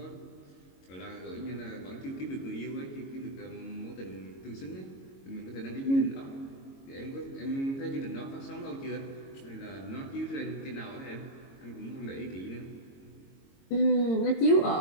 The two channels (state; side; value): late; right; 22 ms